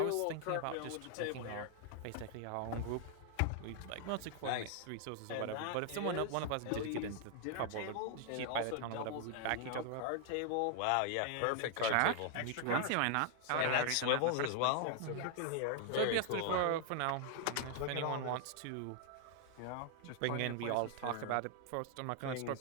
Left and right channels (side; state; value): both; different; correlation 0.00